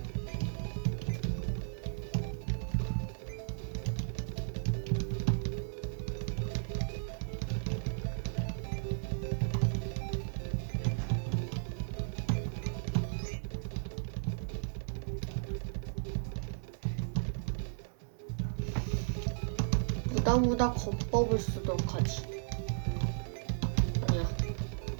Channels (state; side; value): silent; left; digital silence